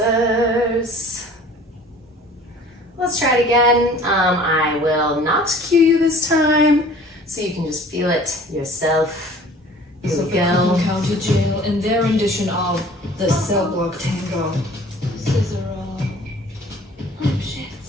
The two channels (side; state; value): both; normal; correlation 0.49